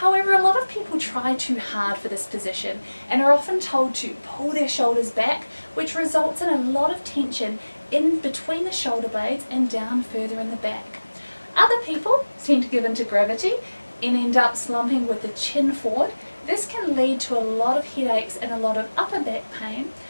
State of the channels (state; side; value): inverted; both; correlation -1.00